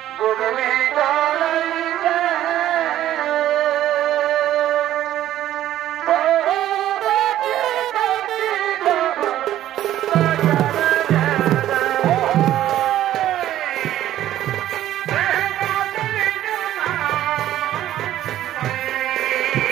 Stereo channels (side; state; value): left; quieter; 12.8 dB